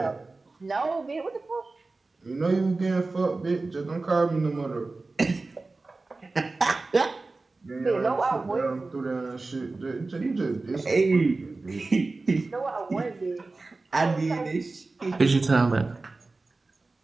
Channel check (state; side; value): quieter; left; 3.5 dB